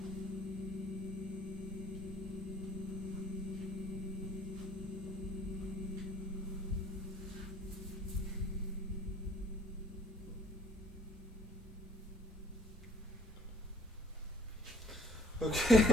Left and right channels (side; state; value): both; normal; correlation 0.58